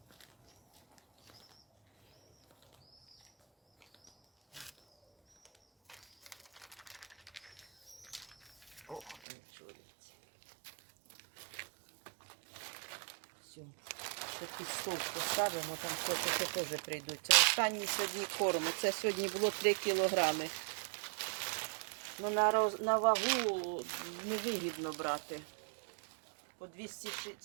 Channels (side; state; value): left; drops out; at 9.2 s